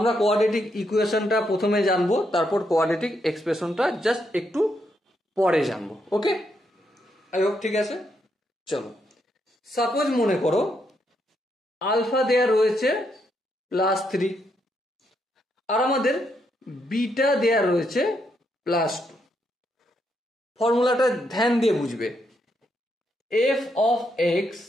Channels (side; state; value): both; normal; correlation 0.78